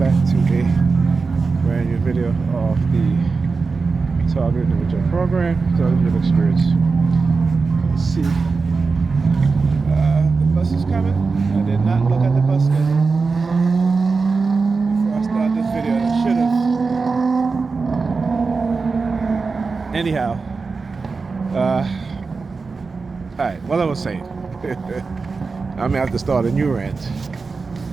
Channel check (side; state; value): left; quieter; 4.4 dB